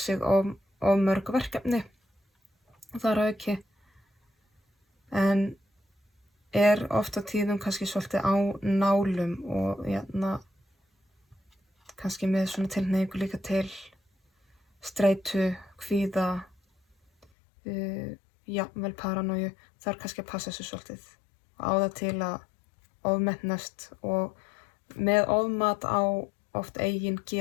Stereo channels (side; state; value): right; drops out; at 17.2 s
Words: of mörg verkefni þar að auki. En er oft á tíðum kannski svolítið á nálum og kannski með svona tilhneigingu líka til streitu, kvíða, jafnvel paranoju. Það er kannski að passa þessu svolítið og á það til að ofmetnast og með ofmat á oft eigin